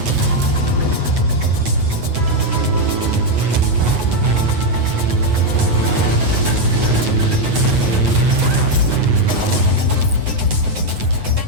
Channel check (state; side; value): late; left; 8.7 ms